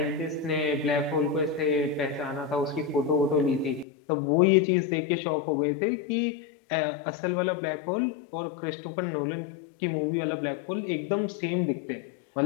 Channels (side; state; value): right; drops out; at 3.9 s